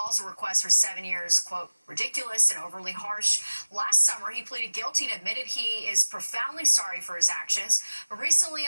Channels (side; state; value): both; inverted; correlation -1.00